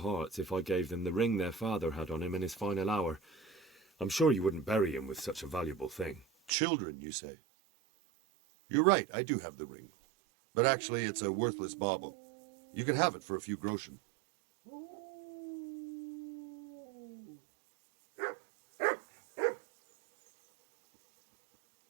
if I gave them the ring their father had on him in his final hour. I'm sure you wouldn't bury him with such a valuable thing. Children, you say? You're right, I do have the ring. But actually, it's a worthless bauble. You can have it for a few groschen.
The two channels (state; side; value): drops out; left; at 6.5 s